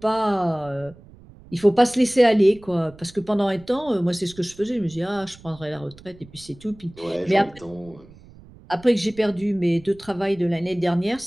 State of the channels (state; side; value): noise; right; rumble, 22 dB below the sound